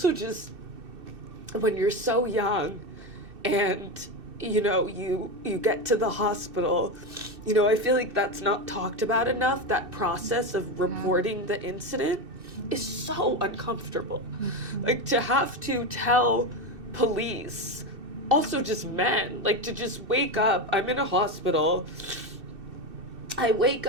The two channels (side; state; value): left; late; 2.6 ms